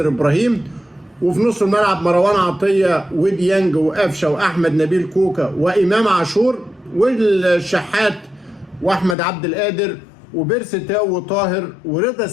ابراهيم، وفي نص الملعب مروان عطية وديانج وقفشه واحمد نبيل كوكا وامام عاشور، والشحات واحمد عبد القادر وبيرسي تاو وطاهر ورضا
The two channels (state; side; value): drops out; right; at 9.2 s